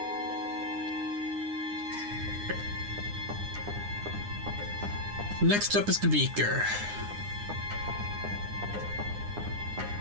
Next up is the beaker.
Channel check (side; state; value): left; late; 9.8 ms